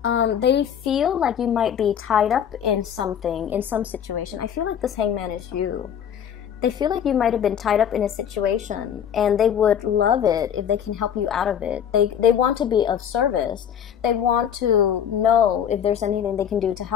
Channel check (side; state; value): right; quieter; 8.8 dB